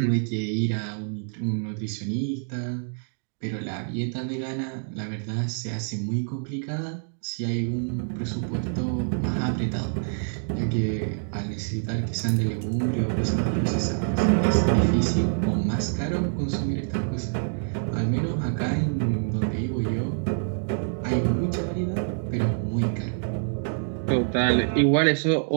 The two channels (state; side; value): silent; left; digital silence